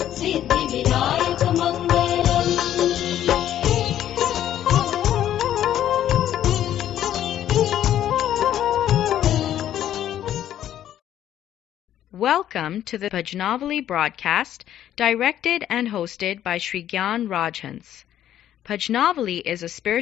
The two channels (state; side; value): quieter; right; 11.4 dB